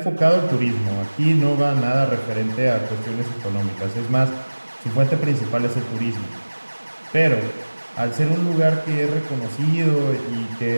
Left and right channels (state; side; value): inverted; both; correlation -1.00